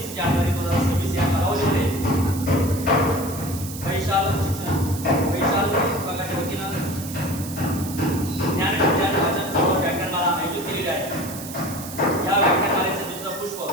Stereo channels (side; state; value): right; noise; hiss, 11 dB below the sound